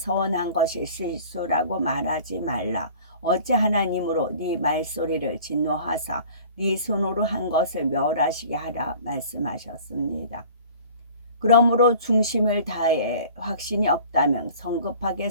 것이 실수라고 말하지 말라. 어찌 하나님으로 네 말소리를 진노하사 네 손으로 한 것을 멸하시게 하라 말씀하셨습니다. 그러므로 중심을 다해 확신이 없다면 성급하게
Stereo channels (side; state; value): both; inverted; correlation -0.46